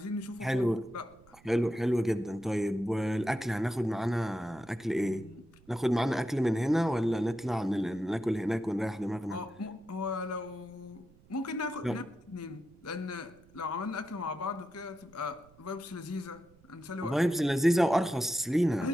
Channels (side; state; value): right; noise; rumble, 27 dB below the sound